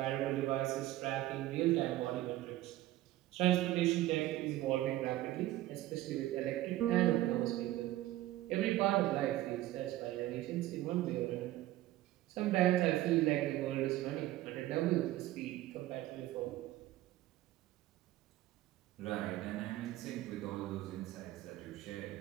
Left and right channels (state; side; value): quieter; left; 15.7 dB